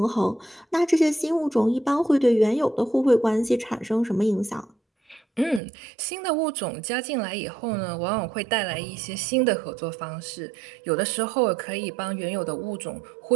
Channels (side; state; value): left; drops out; at 5.6 s